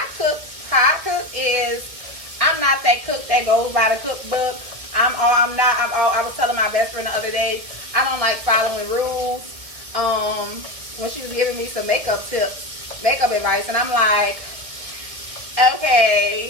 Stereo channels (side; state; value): left; late; 1.6 ms